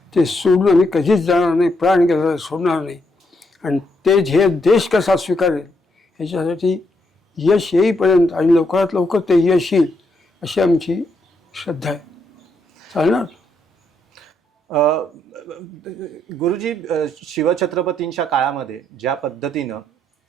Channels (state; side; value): normal; both; correlation 0.77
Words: ते सोडून आम्ही कधीच जाणार नाही, प्राण गेला सोडणार नाही. आणि ते ध्येय देश कसा स्वीकारेल ह्याच्यासाठी यश येईपर्यंत आणि लवकरात लवकर ते यश येईल अशी आमची श्रद्धा आहे. चालणार. गुरुजी, शिवछत्रपतींच्या काळामध्ये ज्या पद्धतीनं